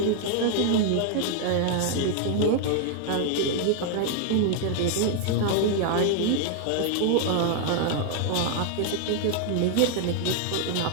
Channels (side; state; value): both; different; correlation 0.00